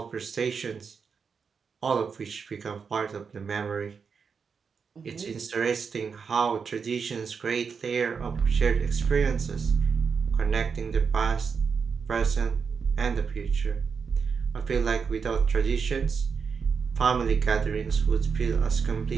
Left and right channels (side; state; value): left; quieter; 5.8 dB